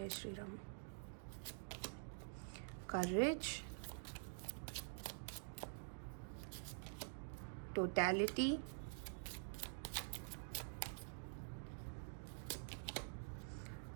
श्री राम। करेज, टोटलिटी,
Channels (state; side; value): silent; left; digital silence